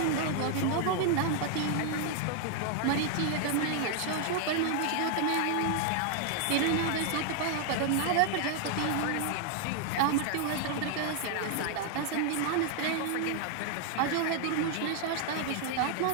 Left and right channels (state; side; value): different; both; correlation 0.00